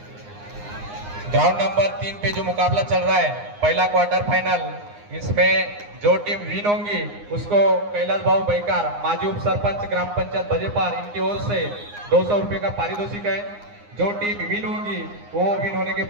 ग्राउंड नंबर 3 पे जो मुकाबला चल रहा है, पहला क्वार्टर फाइनल, इसमें जो टीम विन होंगी उसको कैलाश भाऊ बैकार, माजी उप सरपंच ग्राम पंचायत बजेपार, इनकी ओर से 200 रुपए का पारितोषिक है। जो टीम विन होंगी वो विन होने के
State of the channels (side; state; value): left; late; 9.7 ms